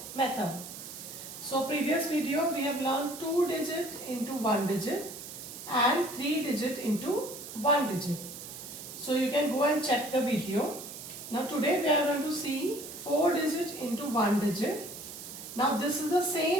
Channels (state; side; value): noise; right; hiss, 11 dB below the sound